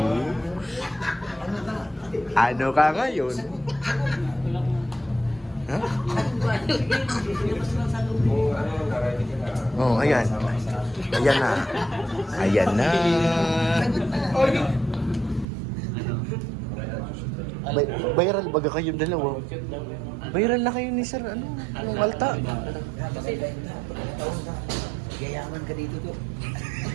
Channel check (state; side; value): drops out; left; at 15.5 s